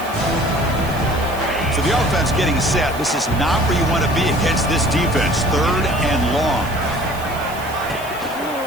So the offense getting set. This is not where you want to be against this defense. Third and long.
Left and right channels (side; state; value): right; noise; hiss, 17 dB below the sound